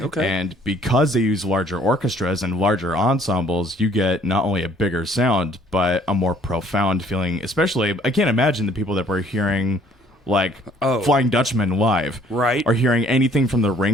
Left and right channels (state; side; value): normal; both; correlation 0.60